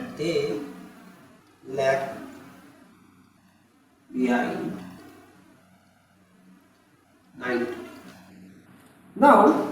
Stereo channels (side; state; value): both; identical; correlation 1.00